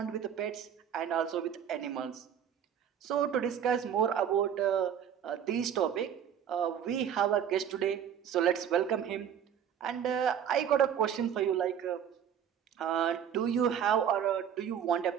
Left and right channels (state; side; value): quieter; left; 8.8 dB